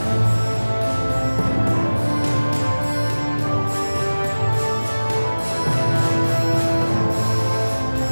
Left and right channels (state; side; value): inverted; both; correlation -1.00